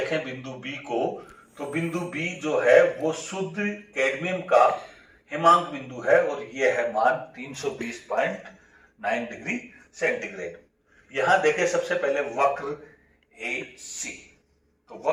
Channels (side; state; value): both; identical; correlation 1.00